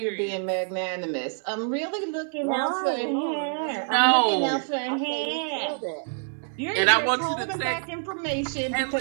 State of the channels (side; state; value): left; silent; 61 dB below the other